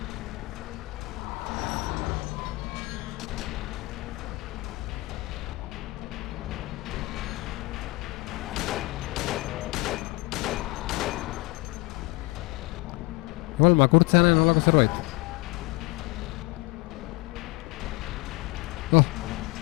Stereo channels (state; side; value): quieter; right; 23.0 dB